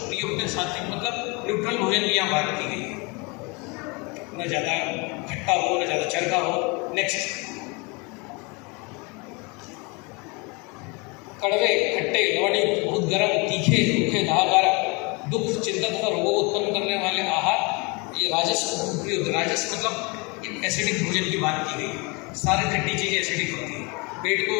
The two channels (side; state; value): right; quieter; 29.0 dB